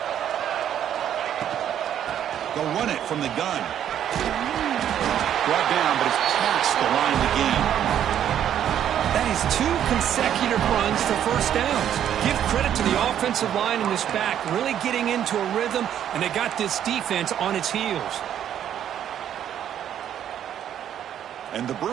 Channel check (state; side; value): quieter; left; 10.1 dB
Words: They'll run it from the gun. Brought down, but it's past the line of the game. That is 2 consecutive runs for first downs. Give credit to the offensive line in this back, really getting into a rhythm, and they got this defense on its heels. And the